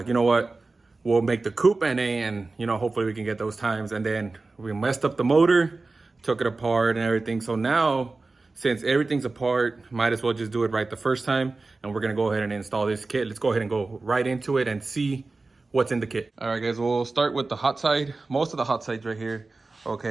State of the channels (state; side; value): quieter; left; 3.6 dB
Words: you know what? We'll make the coupe NA and, you know, hopefully we can get those times. And then we messed up the motor, took it apart and everything. So now, since everything's apart, might as well just do it right the first time. And we're gonna go ahead and install this kit. Let's go ahead and go right into it and see what's in the kit. All right, guys, we'll start with the hot side. Most of the hot sides right here.